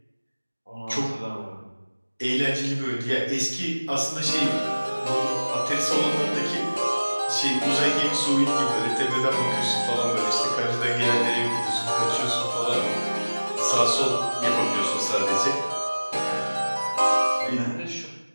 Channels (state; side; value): inverted; both; correlation -1.00